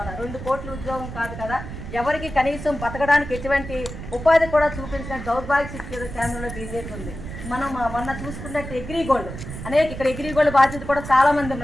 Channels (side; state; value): right; noise; rumble, 9 dB below the sound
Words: 2 కోట్ల ఉద్యోగం కాదు కదా, ఎవరికి కనీసం బతకడానికి ఎటువంటి ఉపాధి కూడా చూపించిన దౌర్భాగ్య స్థితి కేంద్రంలో బీజేపీ ఉంది. మనం మొన్న చూసుకున్నట్టు అగ్రిగోల్డ్ ఇక్కడ అగ్రిగోల్డ్ బాధ్యత కూడా చాలా మంది